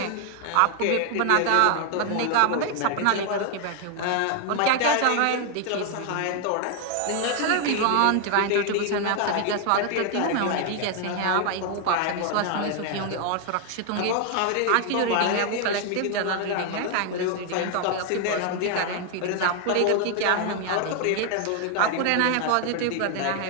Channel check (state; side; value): different; both; correlation 0.00